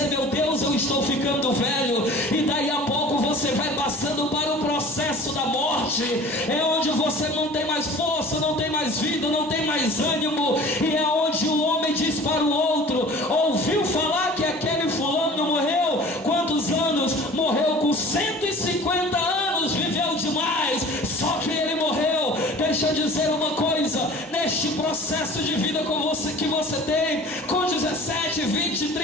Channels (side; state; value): both; normal; correlation 0.44